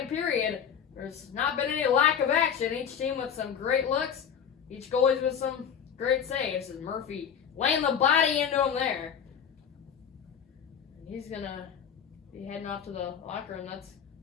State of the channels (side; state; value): right; quieter; 7.9 dB